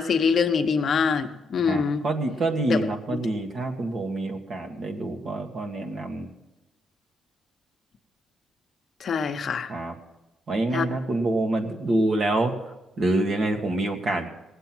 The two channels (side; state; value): both; normal; correlation 0.78